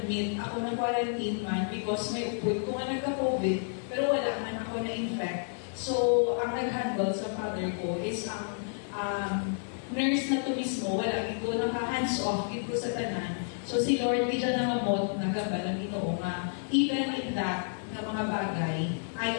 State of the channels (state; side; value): silent; right; digital silence